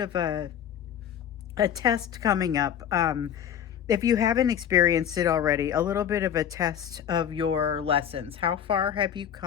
a test coming up. If you haven't experienced it already, a little bit of a test of your lessons. How far have you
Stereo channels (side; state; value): right; quieter; 9.2 dB